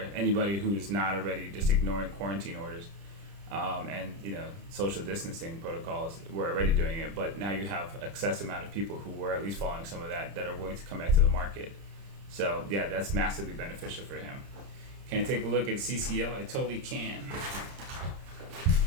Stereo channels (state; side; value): late; left; 30 ms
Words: anybody who's not already just ignoring quarantine orders, and social distancing protocols. We're already doing it, but now you have excess amount of people who were at least following some of that are willing to come back to the market. So yeah, that's massively beneficial for him. Can I take a look at CCL? I totally can.